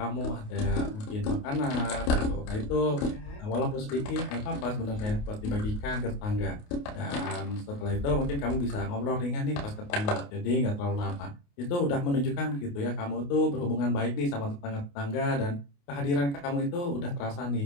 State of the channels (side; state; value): right; late; 28 ms